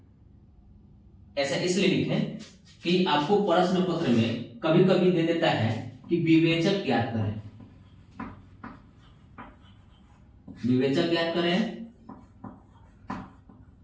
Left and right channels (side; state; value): both; identical; correlation 1.00